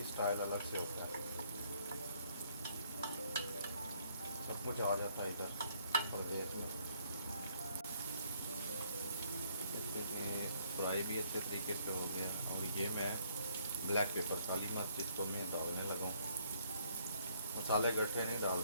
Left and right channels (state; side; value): inverted; both; correlation -0.66